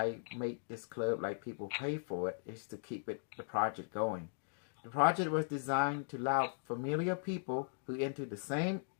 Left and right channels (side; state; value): right; silent; digital silence